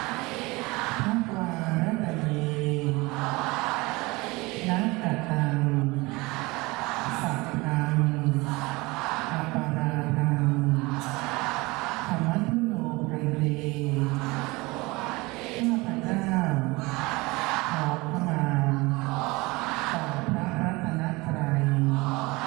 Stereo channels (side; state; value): left; quieter; 23.3 dB